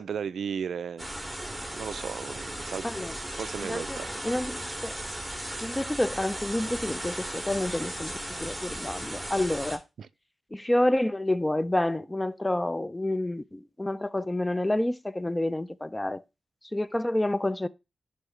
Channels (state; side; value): normal; both; correlation 0.97